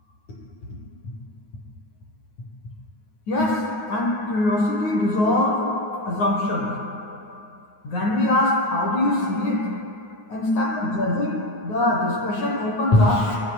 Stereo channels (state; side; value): late; right; 9.5 ms